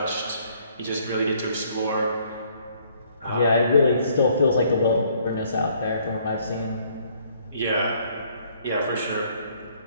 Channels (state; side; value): inverted; both; correlation -0.64